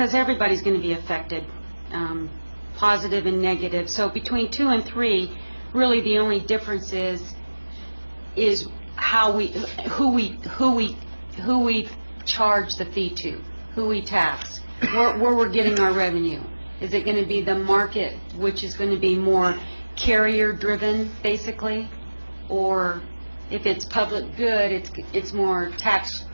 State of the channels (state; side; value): inverted; both; correlation -1.00